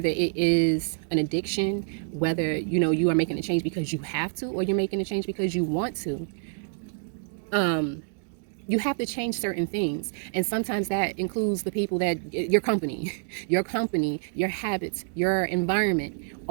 it is an addiction, whether, you are making a change because you have to, or you're making a change because you want to. You have to change certain things. And sometimes that includes the people your company, your habits, your environment,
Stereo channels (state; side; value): silent; left; digital silence